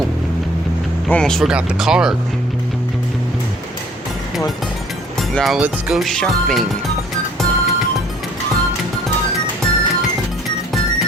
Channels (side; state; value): both; normal; correlation 0.56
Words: almost forgot the card. Now let's go shopping.